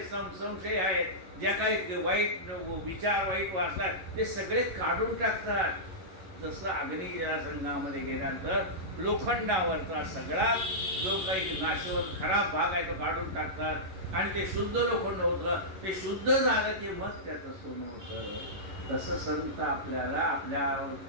संशय आहेत, ज्या काही वाईट विचार, वाईट वासनात, ते सगळे काढून टाकतात. जसं अग्नीच्या संघामध्ये गेल्यानंतर लोखंडावरचा सगळा जो काही नाशवंत खराब भाग आहे तो काढून टाकतात आणि ते शुद्ध लोखंड होतं. ते शुद्ध झालं की मग त्याचं सोनं होतं. तसं संत आपल्याला आपल्या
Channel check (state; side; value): late; left; 11 ms